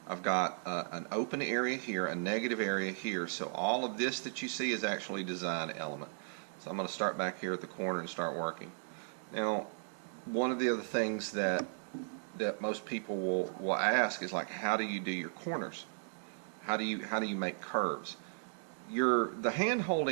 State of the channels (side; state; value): left; silent; digital silence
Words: I've got an open area here, a negative area here, so all of this that you see is actually design element. So I'm going to start back here at the corner and start working. Now, one of the other things that most people will ask is, like, how do you do your corners? How do you make curves? The hand